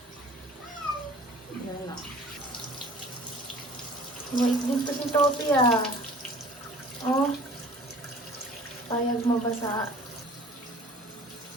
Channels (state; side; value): normal; both; correlation 0.47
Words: Yan na. Wait, dito si Topi ah. Oh. Payag mabasa.